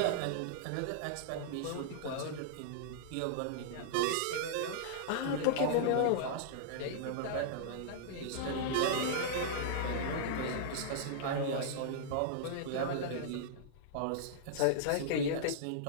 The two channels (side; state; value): both; different; correlation -0.02